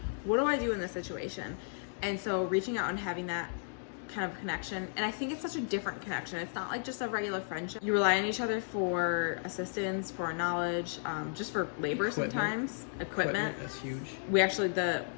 what do I do in this situation? And so reaching out and having that kind of connection, and I think it's such a different connection. It's not like just a regular friendship. You rely on each other for assistance, for knowledge, just for labor sometimes. Equipment. That's huge. We actually,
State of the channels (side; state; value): right; silent; digital silence